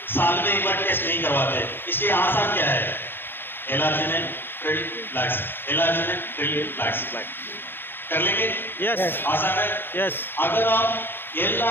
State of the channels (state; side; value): late; right; 0.10 ms